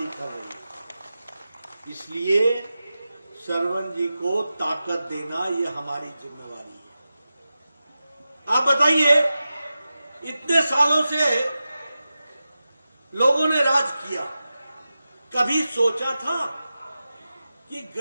कर रही है। इसलिए सरवण जी को ताकत देना यह हमारी जिम्मेवारी है। आप बताइए, इतने सालों से लोगों ने राज किया, कभी सोचा था कि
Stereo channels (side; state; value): both; inverted; correlation -0.93